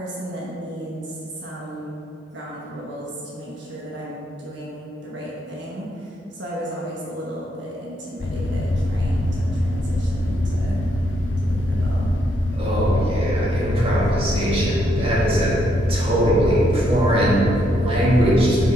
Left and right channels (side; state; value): both; normal; correlation 0.74